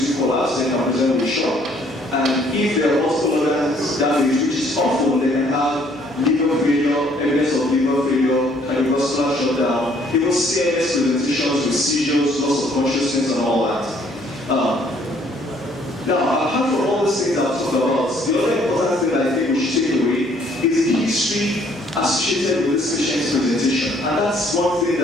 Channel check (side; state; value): left; noise; hum, 27 dB below the sound